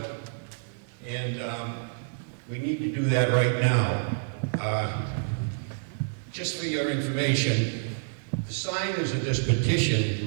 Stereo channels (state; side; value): silent; left; digital silence